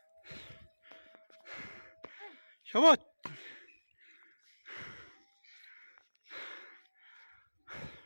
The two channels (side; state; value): both; inverted; correlation -1.00